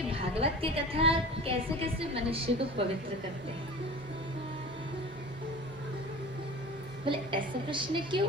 भागवत की कथा कैसे कैसे मनुष्य को पवित्र करते हैं? बोले ऐसा प्रश्न क्यों?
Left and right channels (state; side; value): normal; both; correlation 0.37